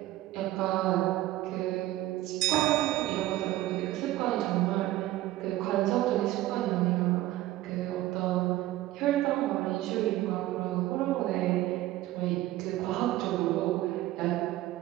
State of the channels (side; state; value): left; quieter; 15.9 dB